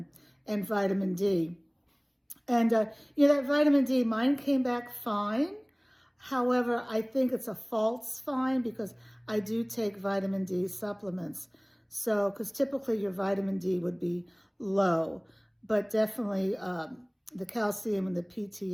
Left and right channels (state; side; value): identical; both; correlation 1.00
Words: vitamin D. And, that vitamin D, mine came back fine. However, I think it's a false fine because I do take vitamin D supplements. So, because typically your vitamin D would be low, but definitely the calcium and the